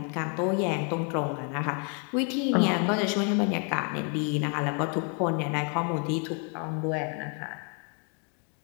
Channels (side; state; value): right; quieter; 38.6 dB